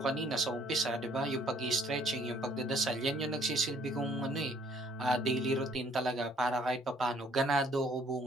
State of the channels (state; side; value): normal; both; correlation 0.61